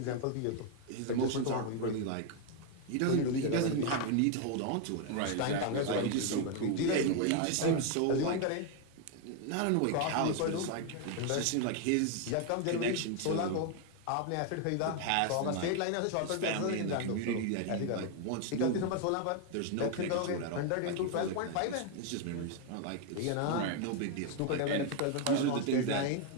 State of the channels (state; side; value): different; both; correlation 0.01